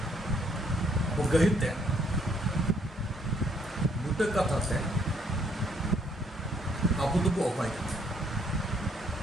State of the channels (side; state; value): both; normal; correlation 0.68